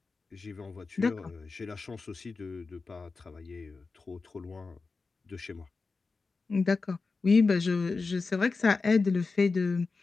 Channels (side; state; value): right; quieter; 4.2 dB